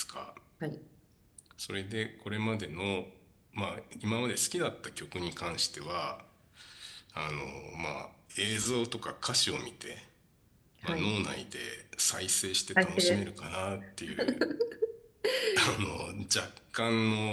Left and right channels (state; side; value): identical; both; correlation 1.00